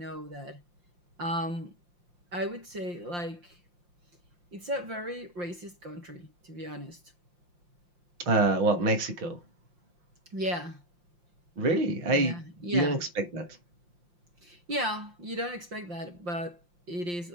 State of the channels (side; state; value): left; late; 5.7 ms